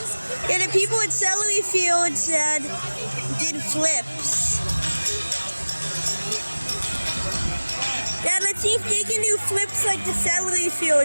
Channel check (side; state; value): both; inverted; correlation -1.00